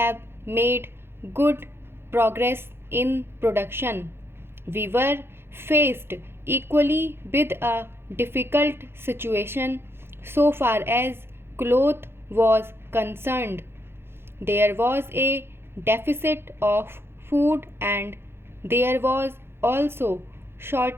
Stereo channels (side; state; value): left; late; 0.11 ms